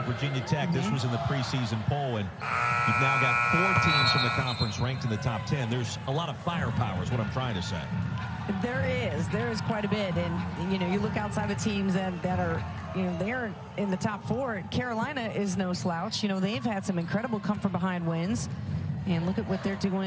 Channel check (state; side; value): identical; both; correlation 1.00